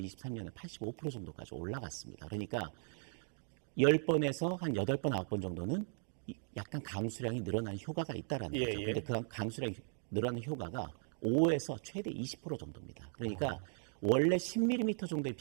85% 정도까지 올라갔습니다. 그러니까 10번에서 한 8번, 9번 정도는 약간 강수량이 늘어나는 효과가 있다라는 예, 거죠. 예. 근데 그 강수량이 늘어나는 효과가 5에서 최대 20% 정도입니다. 그러니까 원래 10mm 정도의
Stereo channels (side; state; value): left; silent; 52 dB below the other